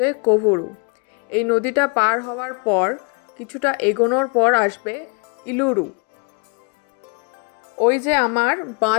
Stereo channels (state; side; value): quieter; right; 34.3 dB